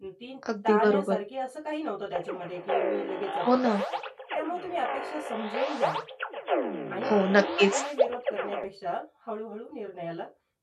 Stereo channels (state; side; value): identical; both; correlation 1.00